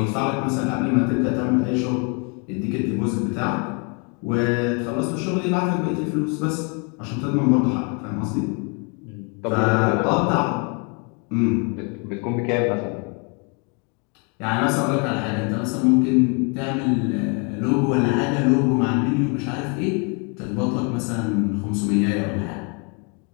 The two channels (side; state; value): right; quieter; 34.8 dB